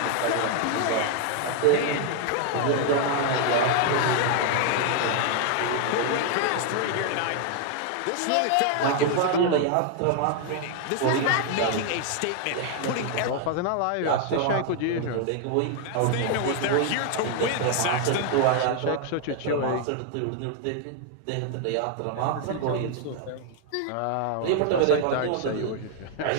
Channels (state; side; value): different; both; correlation 0.00